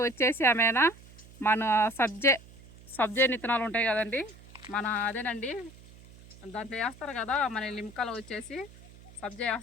వచ్చేసి ఏమైనా మన సబ్జే నిత్తనాలు ఉంటాయి కదండి, అదేనండి దాంట్లో వేస్తారు కదా, మన లింకాలో వచ్చేసి సబ్జా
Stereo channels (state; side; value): noise; right; hum, 21 dB below the sound